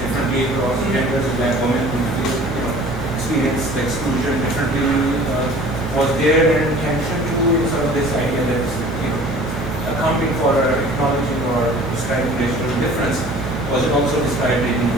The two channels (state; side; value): normal; both; correlation 0.47